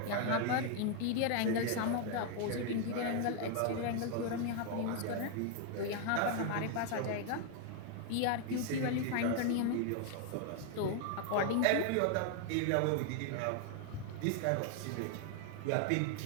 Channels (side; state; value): both; different; correlation 0.00